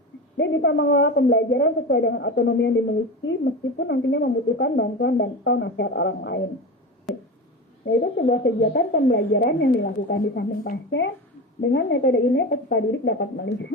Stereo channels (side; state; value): both; normal; correlation 0.26